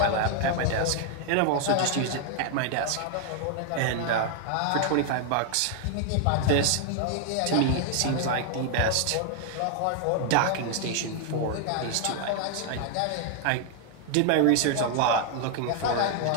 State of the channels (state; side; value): different; both; correlation 0.00